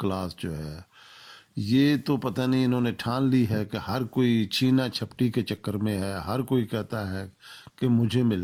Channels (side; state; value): both; identical; correlation 1.00